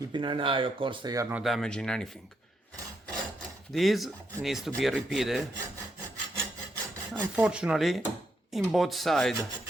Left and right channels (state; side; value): normal; both; correlation 0.79